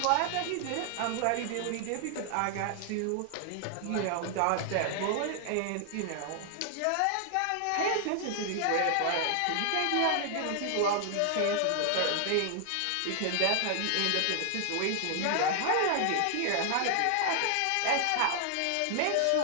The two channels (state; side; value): different; both; correlation 0.00